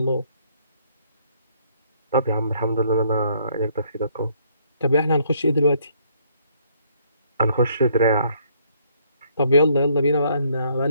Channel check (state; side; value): inverted; both; correlation -0.66